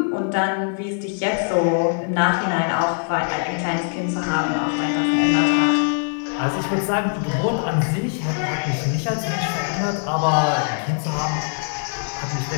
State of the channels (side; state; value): right; silent; 64 dB below the other